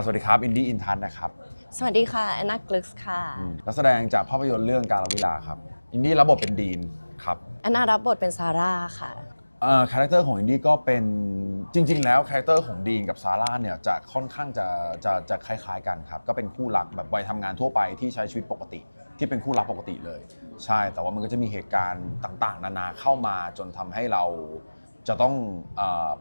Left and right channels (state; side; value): inverted; both; correlation -1.00